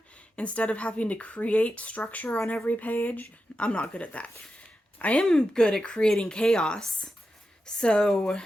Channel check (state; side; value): normal; both; correlation 0.89